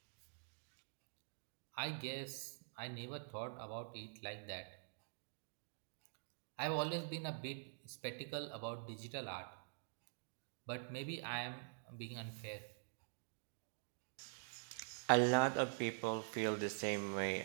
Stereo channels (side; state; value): left; silent; digital silence